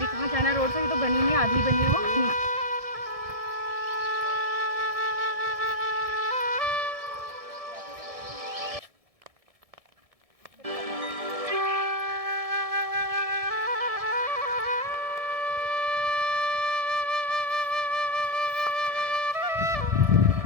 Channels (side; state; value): left; late; 1.7 ms